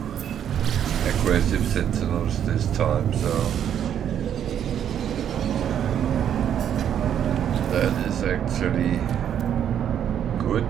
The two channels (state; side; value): quieter; left; 9.4 dB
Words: aggressive sentinels this time, so that is actually good,